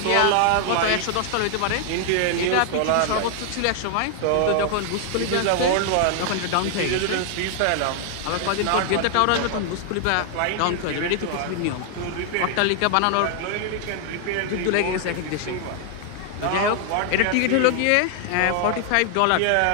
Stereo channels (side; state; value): both; different; correlation 0.00